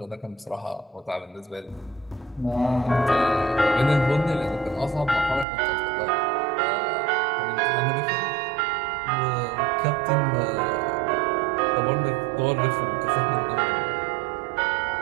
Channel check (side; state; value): left; drops out; at 5.5 s